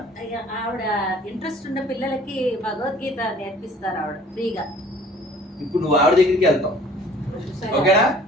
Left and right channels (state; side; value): normal; both; correlation 0.52